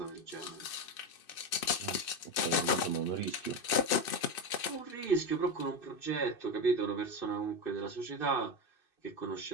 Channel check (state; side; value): late; right; 2.6 ms